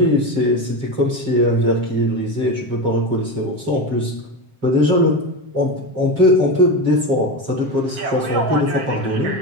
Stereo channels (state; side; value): late; left; 7.5 ms